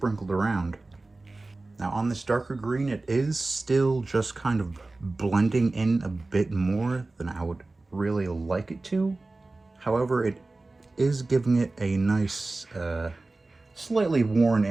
around. Now on this darker green, it is still just kind of blending in a bit more than I would really like it to. However, it is giving it a nice, slightly worn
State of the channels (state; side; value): quieter; left; 3.2 dB